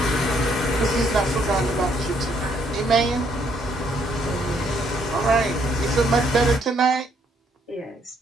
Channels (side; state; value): both; normal; correlation 0.69